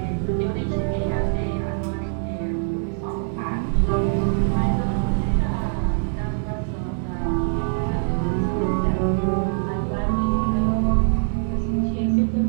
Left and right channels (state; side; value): silent; left; digital silence